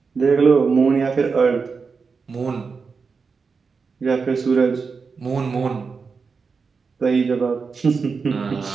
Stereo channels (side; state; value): left; quieter; 5.1 dB